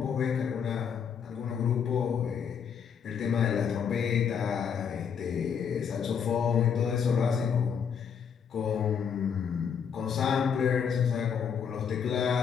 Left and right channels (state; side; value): quieter; right; 7.2 dB